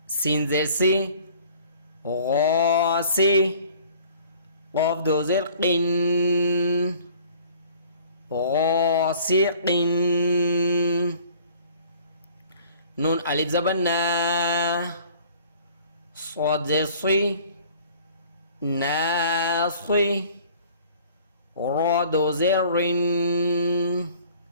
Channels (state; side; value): inverted; both; correlation -0.52